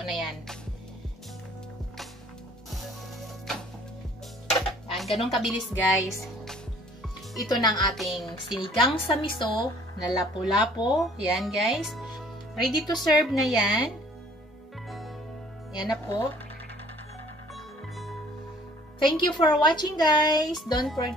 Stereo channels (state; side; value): normal; both; correlation 0.56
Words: na yan. Yan, ganun kabilis guys. Ito na ang ating sinigang sa miso na lapu-lapo. Yan guys. Ready to serve na yan. Yan na po. Thank you for watching guys. Don't